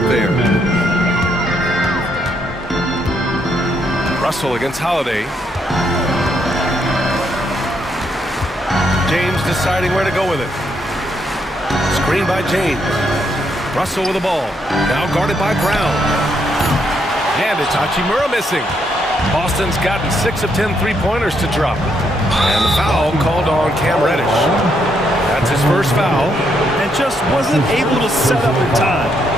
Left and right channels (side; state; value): both; normal; correlation 0.75